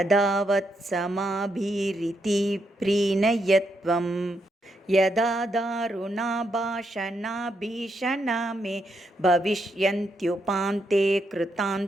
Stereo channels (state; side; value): normal; both; correlation 0.79